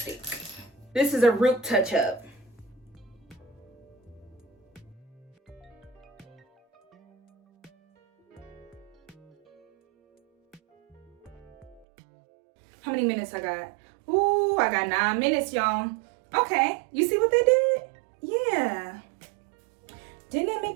This is a root touch-up. How many minutes I got? Ooh, I got 9 minutes, y'all. Okay, you see what they did? Yeah. Didn't it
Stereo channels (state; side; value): drops out; left; at 11.9 s